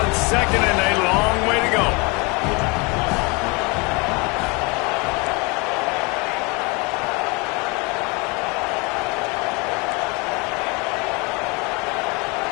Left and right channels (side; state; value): right; quieter; 28.6 dB